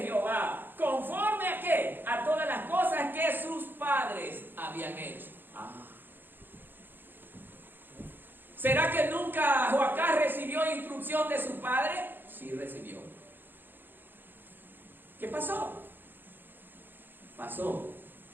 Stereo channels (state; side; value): late; left; 0.095 ms